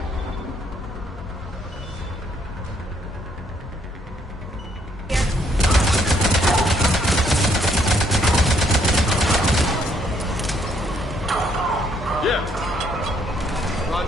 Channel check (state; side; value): normal; both; correlation 0.70